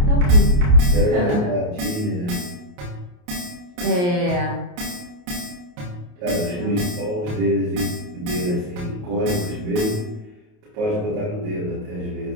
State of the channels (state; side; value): late; left; 28 ms